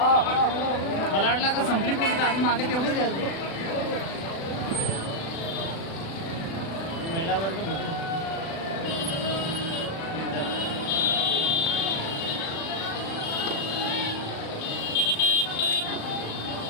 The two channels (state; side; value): late; right; 36 ms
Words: मला वाटलं का संपली पण आधी मागे तेवढेच महिला वर्ग